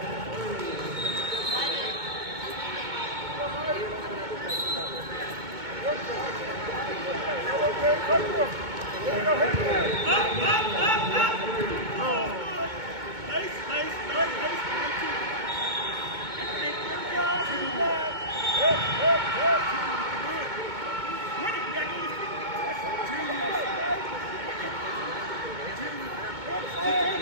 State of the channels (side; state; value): left; late; 2.2 ms